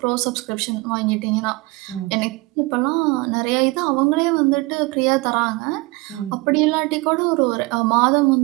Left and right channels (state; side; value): quieter; left; 23.8 dB